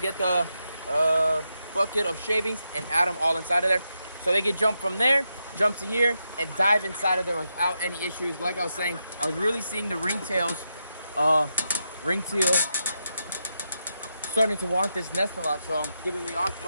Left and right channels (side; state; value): both; inverted; correlation -0.85